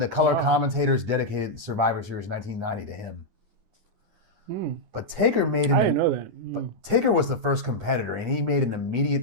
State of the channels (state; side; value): late; left; 9.8 ms